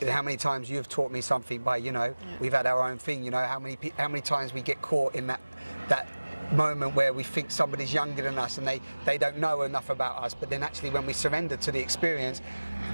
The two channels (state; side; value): inverted; both; correlation -1.00